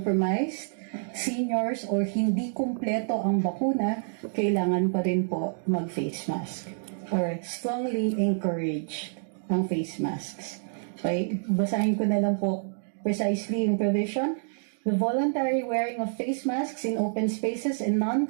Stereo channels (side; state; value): left; silent; digital silence